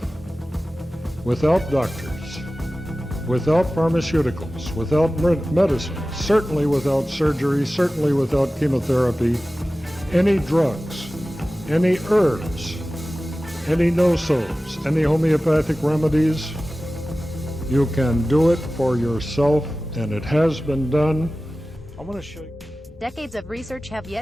without doctors, without pharmaceuticals, without medicine, certainly without surgery, certainly without chemotherapy, any drugs, any herbs, any no-sos, any homeopathic remedies. You can do it for yourself, and it has been done. I want to show you. Decades of research have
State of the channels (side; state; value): both; normal; correlation 0.96